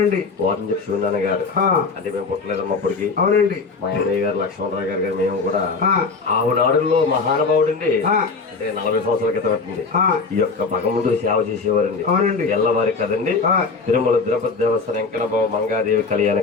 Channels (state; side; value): quieter; right; 4.5 dB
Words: వారం చెప్పి శివనాన్న గారు అంటే మేము పుట్టలేదమ్మా అప్పటికి. మా అన్నయ్య గారు లక్ష్మణరావు గారు మేము కూడా ఆవునాడుల్లో మహానుభావుడండి. అంటే 40 సంవత్సరాల క్రితం పెట్టింది ఈ యొక్క భగవంతుడి సేవ చేసేవారండి. ఎల్లవారి కదండి. తిరుమల తిరుపతి దేవస్థానం వెంకటబాబు మంగాదేవి కళ్యాణ